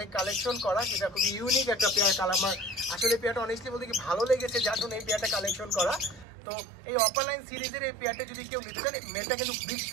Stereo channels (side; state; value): left; drops out; at 6.2 s